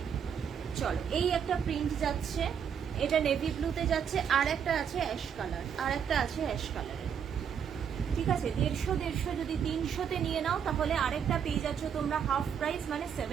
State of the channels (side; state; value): left; quieter; 7.8 dB